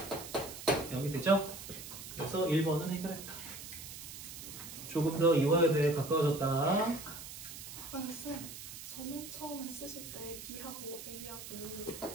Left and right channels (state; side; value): noise; right; hiss, 11 dB below the sound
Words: 0이 되죠? 그래서 1번은 해결했다. 조금 더 이화여대에 가까워졌다. 아니 쌤, 저 맨 처음에 쓰실 때 B하고 A하고